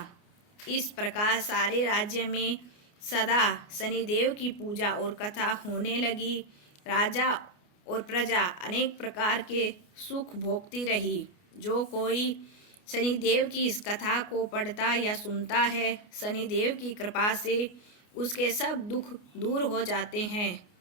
इस प्रकार सारे राज्य में सदा शनिदेव की पूजा और कथा होने लगी। राजा और प्रजा अनेक प्रकार के सुख भोगती रही। जो कोई शनिदेव की इस कथा को पढ़ता या सुनता है, शनिदेव की कृपा से उसके सब दुख दूर हो जाते हैं।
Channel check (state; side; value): late; right; 29 ms